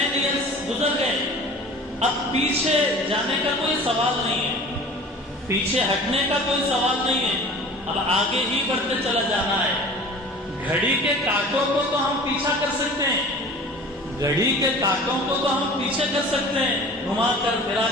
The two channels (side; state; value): both; normal; correlation 0.42